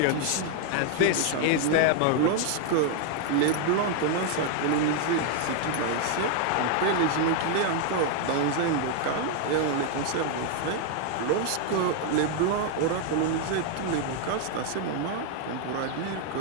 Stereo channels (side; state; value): both; different; correlation 0.00